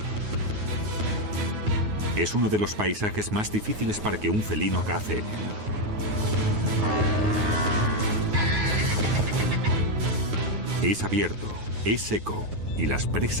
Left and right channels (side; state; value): left; late; 9.5 ms